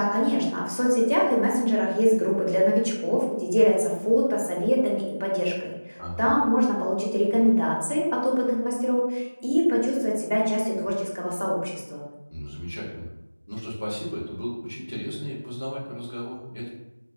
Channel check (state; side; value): inverted; both; correlation -1.00